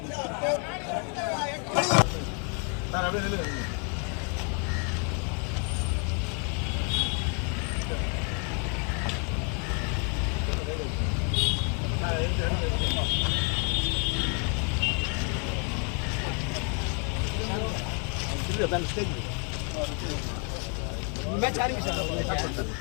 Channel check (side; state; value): right; quieter; 38.5 dB